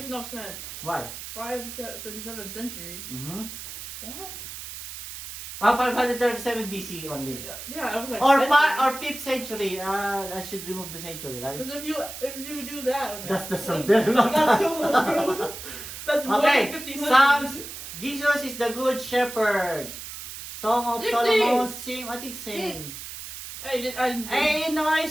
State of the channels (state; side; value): noise; right; hiss, 10 dB below the sound